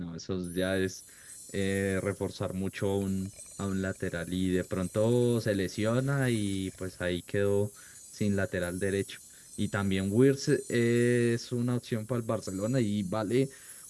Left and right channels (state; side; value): identical; both; correlation 1.00